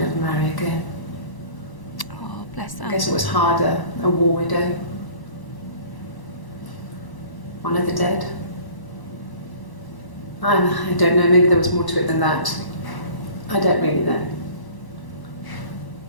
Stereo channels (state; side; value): late; right; 1.0 ms